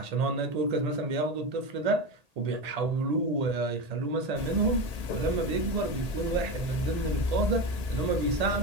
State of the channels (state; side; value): late; left; 1.8 ms